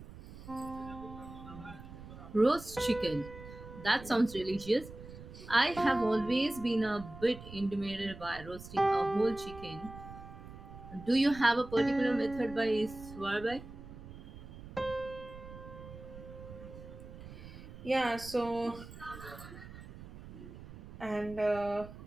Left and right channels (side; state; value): right; noise; rumble, 14 dB below the sound